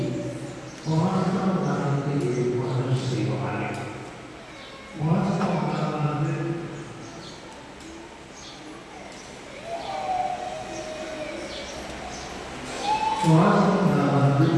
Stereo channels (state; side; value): identical; both; correlation 1.00